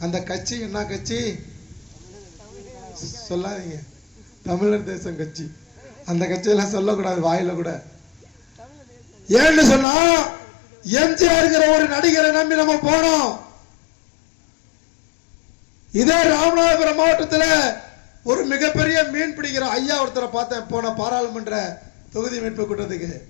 அந்த கட்சி என்ன கட்சி சொல்லாதீங்க, தமிழர் தேசம் கட்சி. அந்த கட்சியெல்லாம் சொல்லக்கூடாது வாயில கூட. ஏன்னு சொன்னா எம்ஜிஆர்ங்கிற ஒரு நடிகரை நம்பி நம்ம போனோம். இதே ராமநாதபுரம் மாவட்டத்தில் ஒரு மிகப்பெரிய மீன் பிடிக்கிற ஐயா ஒருத்தரை பார்த்தேன் போன பாராளுமன்ற தொகுதி மீட்பு கூட்டத்துக்கு.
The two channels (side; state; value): right; drops out; at 9.9 s